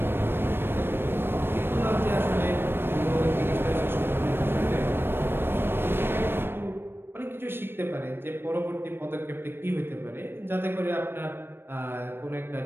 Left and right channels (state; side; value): late; left; 0.10 ms